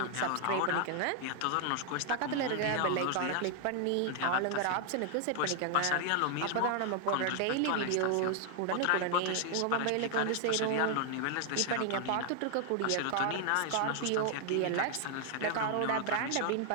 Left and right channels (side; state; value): both; different; correlation 0.00